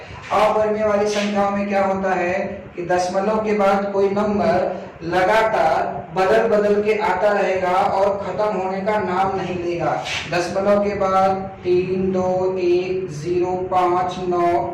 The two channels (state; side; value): identical; both; correlation 1.00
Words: अपरिमेय वाली संख्याओं में क्या होता है कि दशमलव के बाद कोई नंबर लगातार बदल बदल के आता रहेगा और खत्म होने का नाम नहीं लेगा। दशमलव के बाद 3, 2, 1, 0, 5, 9,